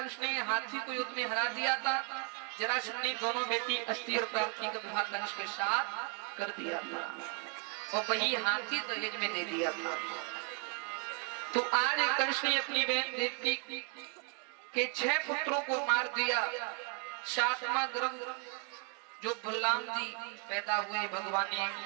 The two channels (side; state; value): left; quieter; 38.7 dB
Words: ने हाथी को युद्ध में हरा दिया था। जरासंध ने दोनों बेटी अस्ति और प्राप्ति का विवाह कंस के साथ कर दिया था और वही हाथी दहेज में दे दिया था। तो आज कंस ने अपनी बहन देवकी के 6 पुत्रों को मार दिया। 7वां गर्भ जो बलराम जी पैदा हुए, भगवान ने